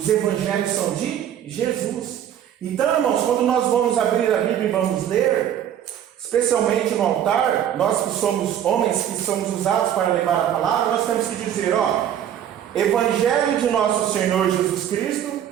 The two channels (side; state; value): left; quieter; 10.2 dB